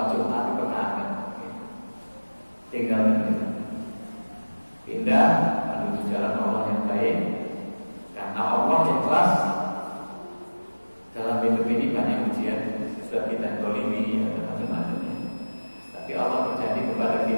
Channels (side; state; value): both; inverted; correlation -1.00